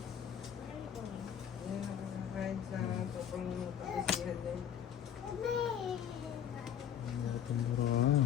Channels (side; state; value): right; quieter; 9.2 dB